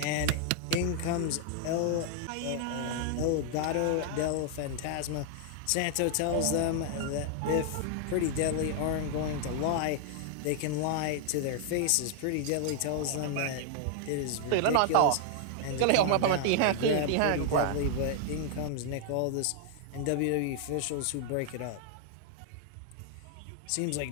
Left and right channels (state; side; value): different; both; correlation 0.00